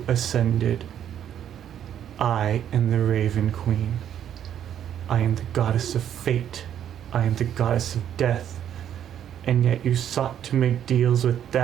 ascended. I am the Raven Queen. I am the goddess of fate. I am the goddess of death. And yet you sought to make deals with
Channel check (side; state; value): left; quieter; 9.9 dB